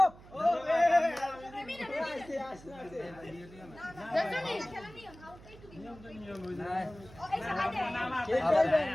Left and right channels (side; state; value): right; noise; hum, 20 dB below the sound